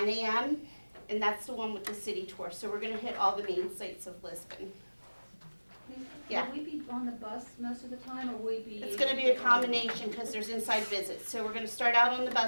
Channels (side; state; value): both; inverted; correlation -1.00